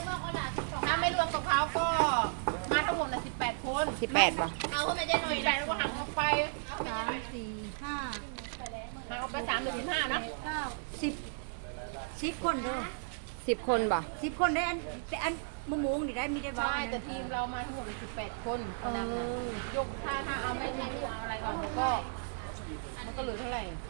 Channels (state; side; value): silent; left; digital silence